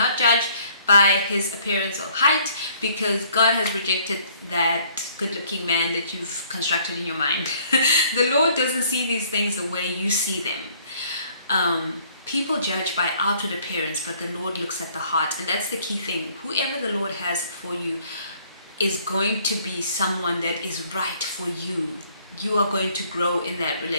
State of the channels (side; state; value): both; inverted; correlation -0.61